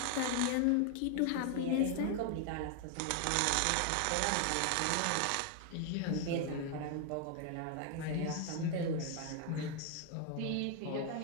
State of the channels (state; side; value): different; both; correlation 0.00